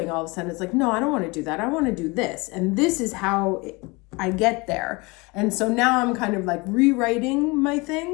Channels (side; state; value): right; quieter; 26.1 dB